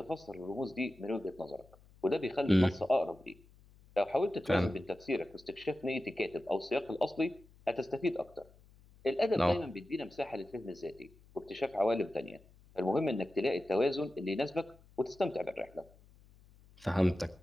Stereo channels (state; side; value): noise; left; hum, 26 dB below the sound